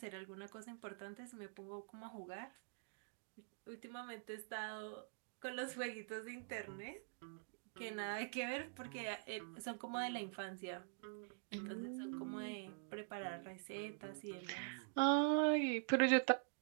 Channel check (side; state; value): left; silent; digital silence